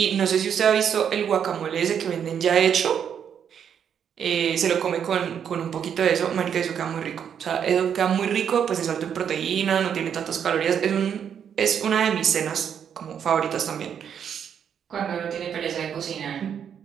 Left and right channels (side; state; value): left; quieter; 8.2 dB